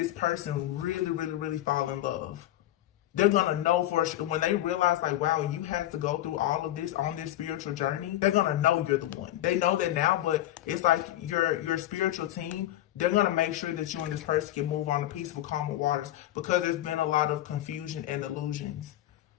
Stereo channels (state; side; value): quieter; right; 13.9 dB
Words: person really, really, really fall in love. They're going to know for sure, when they realize like, wow, you had to go through all of this on this spiritual journey, they're going to know you're the one. They know that now, but it's like your spiritual team, they're going to make sure that you and this person can move on to peaceful, calmer waters, because there's been a lot of confusion and illusions.